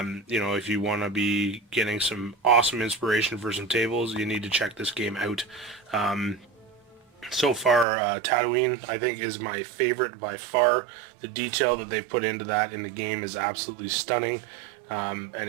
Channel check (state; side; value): drops out; left; at 7.9 s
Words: you want to be getting some awesome inspiration for some tables, you need to check this game out. So far, Tatooine, I think, is my favorite by far. The detail that they've put into that in the game is absolutely stunning. And